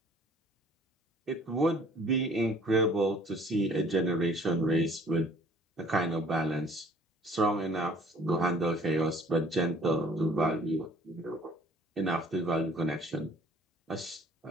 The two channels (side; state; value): both; normal; correlation 0.54